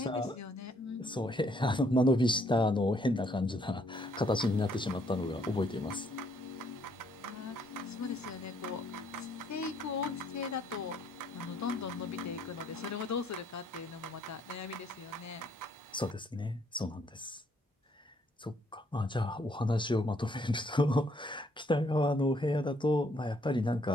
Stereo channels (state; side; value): normal; both; correlation 0.68